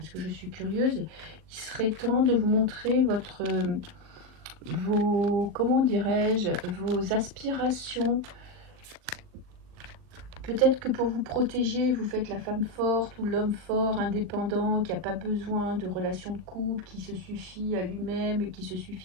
que je suis curieuse. Il serait temps de vous montrer comment dirais-je, vos aspirations. Peut-être que pour vous protéger, vous faites la femme forte ou l'homme fort, indépendant, qui n'a pas besoin de relations de couple, qui se suffit à lui-même et qui se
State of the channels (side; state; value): left; late; 39 ms